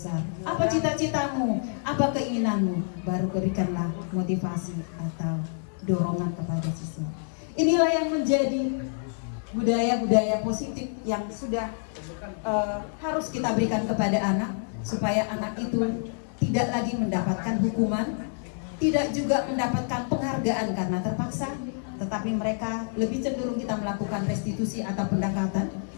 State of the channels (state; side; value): silent; right; digital silence